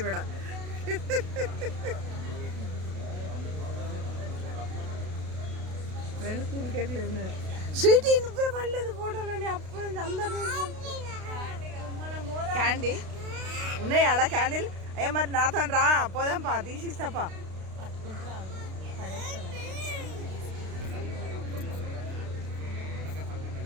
రెండు కూల్ కేట్లు ఉన్నారు. స్వీటీ నువ్వే పడలేదు ఫోటోలని అప్పుడు నుంచి అందరినీ. క్యాండీ ఉన్నాయి ఆడ క్యాండిల్. అయ్యా మరి నాతో రా పోదాంపా తీసిస్తాపా. పట్టుకుంటారా పడేస్తాను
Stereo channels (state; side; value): late; left; 32 ms